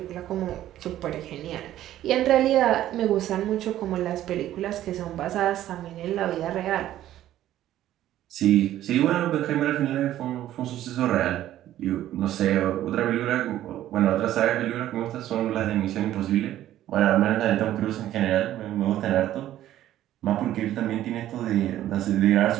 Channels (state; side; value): quieter; left; 13.0 dB